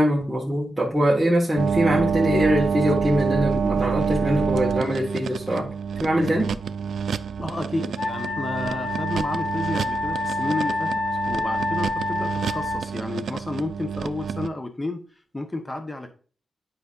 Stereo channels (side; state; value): both; normal; correlation 0.87